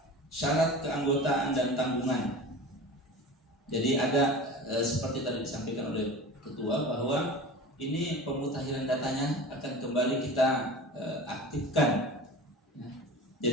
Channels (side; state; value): both; normal; correlation 0.35